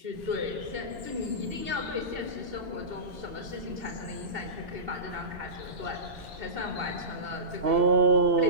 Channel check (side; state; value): left; late; 2.7 ms